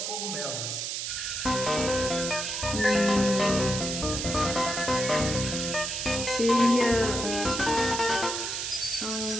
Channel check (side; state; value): right; noise; hiss, 3 dB below the sound